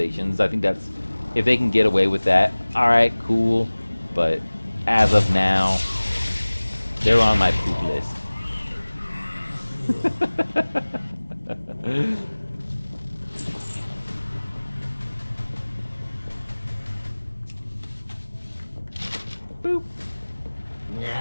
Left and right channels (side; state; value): both; inverted; correlation -1.00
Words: I think that's, if they can get away with that, all right, cool. But as of now, they're on my poop list. Boop.